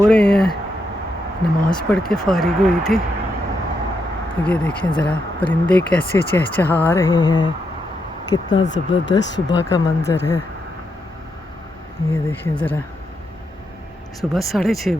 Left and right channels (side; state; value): both; normal; correlation 0.82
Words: रहे हैं। नमाज़ पढ़ के फ़ारिग हुई थी। ये देखें ज़रा परिंदे कैसे चहचहा रहे हैं, कितना ज़बरदस्त सुबह का मंज़र है। ये देखें ज़रा, सुबह 6:30